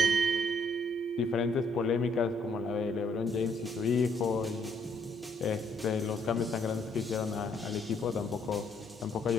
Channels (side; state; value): both; normal; correlation 0.69